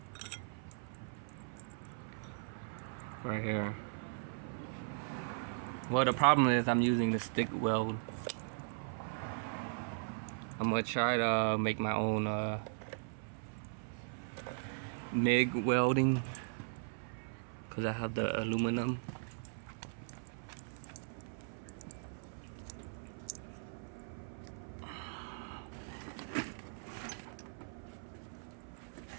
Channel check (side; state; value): left; silent; 52 dB below the other